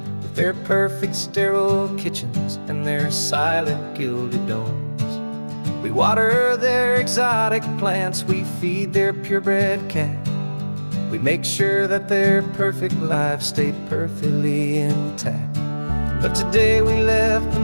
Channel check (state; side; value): inverted; both; correlation -1.00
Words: with their perfect sterile kitchens and their silent gilded domes. We water their exotic plants, we feed their purebred cat. We make sure that their perfect lives stay perfectly intact. But today we left the